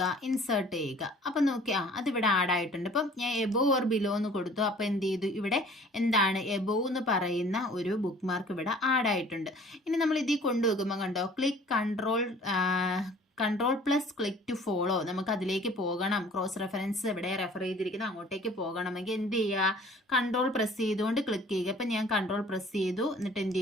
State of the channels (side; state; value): both; normal; correlation 0.51